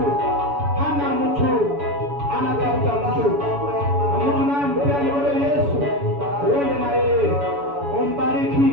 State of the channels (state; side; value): late; left; 7.1 ms